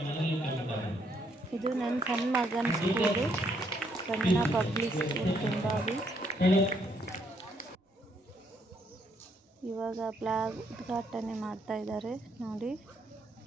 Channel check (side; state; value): both; normal; correlation 0.72